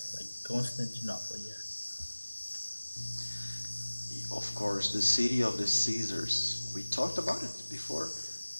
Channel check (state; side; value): inverted; both; correlation -1.00